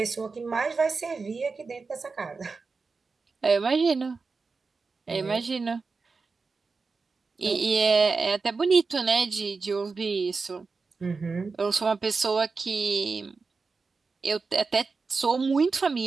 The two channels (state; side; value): quieter; left; 4.4 dB